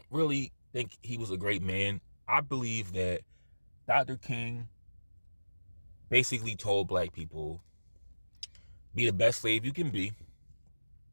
really think he was a great man. I believe that Dr. King basically told black people, be the best slave you can be.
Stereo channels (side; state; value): both; inverted; correlation -1.00